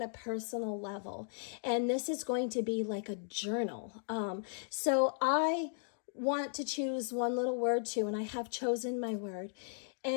a personal level, and this is going to be like a journal. So I want to choose one little word too, and I have chosen my word,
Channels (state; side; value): silent; right; digital silence